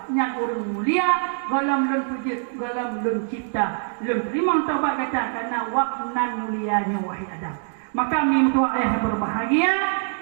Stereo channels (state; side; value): silent; left; 63 dB below the other